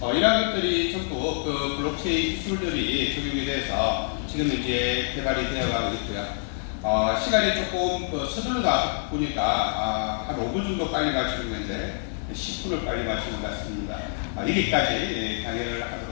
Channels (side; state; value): right; silent; digital silence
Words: 이런 것들이 전부 그 블록체인 기술들이 적용이 돼서 지금 이제 개발이 되어가고 있고요. 시간이 조금 서둘러다 보니까 한 5분 정도 빨리 마치는 건데 10분을 빨리 마치는 것 같습니다. 여기까지 강의를